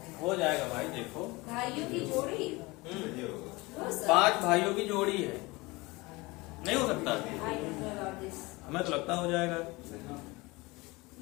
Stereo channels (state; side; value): quieter; right; 23.2 dB